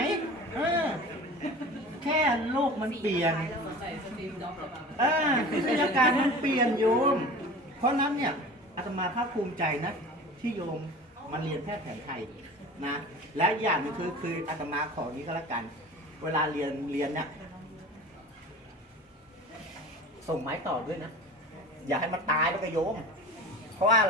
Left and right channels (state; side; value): normal; both; correlation 0.38